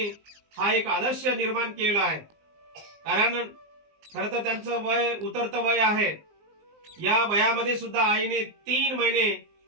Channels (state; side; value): late; left; 19 ms